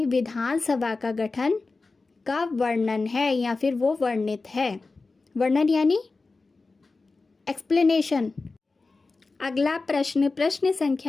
विधानसभा का गठन का वर्णन है या फिर वो वर्णित है। वर्णन यानी एक्सप्लेनेशन। अगला प्रश्न, प्रश्न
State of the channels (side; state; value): right; quieter; 3.8 dB